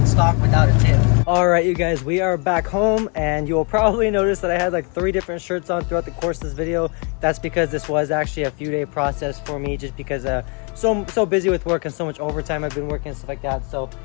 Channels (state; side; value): quieter; right; 35.8 dB